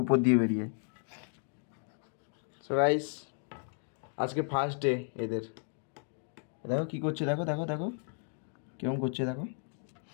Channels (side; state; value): right; silent; 55 dB below the other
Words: উপর দিয়ে বেরিয়ে। সো গাইস আজকে ফার্স্ট ডে এদের, দেখো কি করছে, দেখো দেখো দেখো কেমন করছে, দেখো